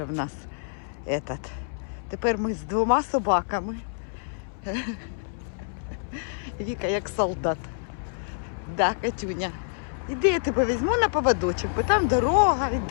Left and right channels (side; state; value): right; silent; 60 dB below the other